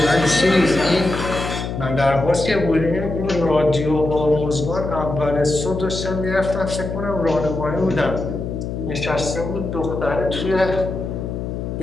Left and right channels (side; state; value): left; noise; hum, 5 dB below the sound